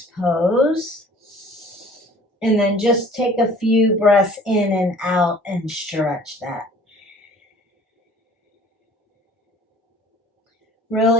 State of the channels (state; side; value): normal; both; correlation 0.50